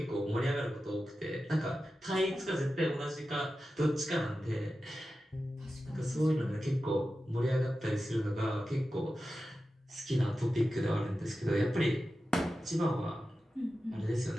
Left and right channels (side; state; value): both; normal; correlation 0.93